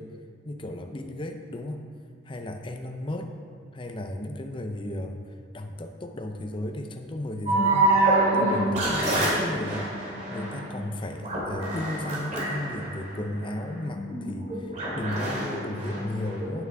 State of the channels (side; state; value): both; normal; correlation 0.28